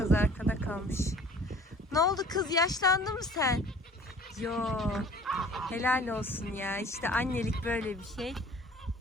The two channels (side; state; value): both; normal; correlation 0.50